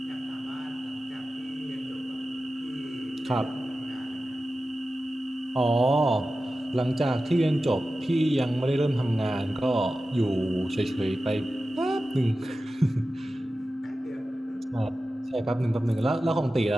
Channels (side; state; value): both; normal; correlation 0.94